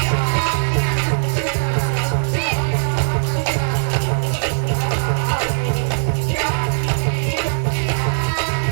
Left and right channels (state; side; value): silent; left; 66 dB below the other